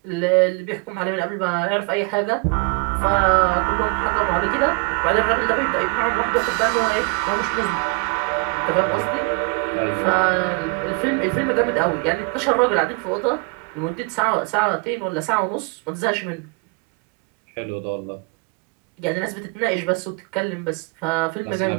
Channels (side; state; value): left; quieter; 30.4 dB